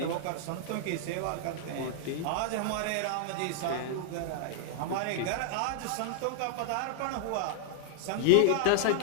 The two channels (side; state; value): both; different; correlation -0.01